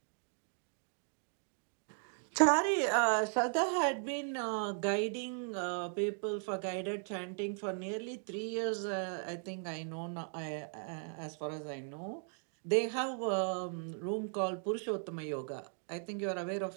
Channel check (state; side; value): silent; left; 53 dB below the other